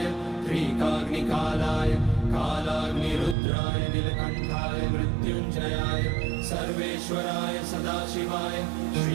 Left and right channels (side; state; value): left; drops out; at 3.4 s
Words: त्रिकाग्निकालाय कालाग्निरुद्राय नीलकण्ठाय मृत्युञ्जयाय सर्वेश्वराय सदाशिवाय